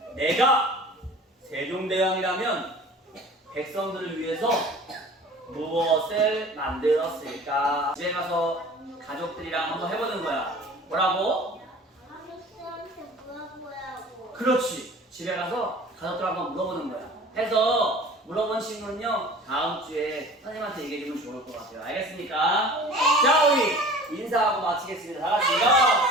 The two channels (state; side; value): normal; both; correlation 0.44